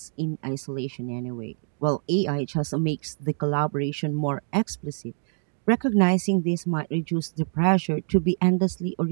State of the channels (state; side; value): silent; left; 61 dB below the other